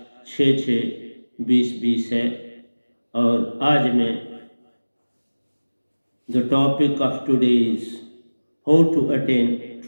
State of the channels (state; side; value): inverted; both; correlation -1.00